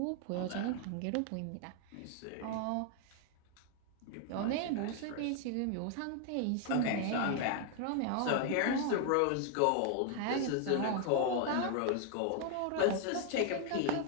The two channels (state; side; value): different; both; correlation 0.00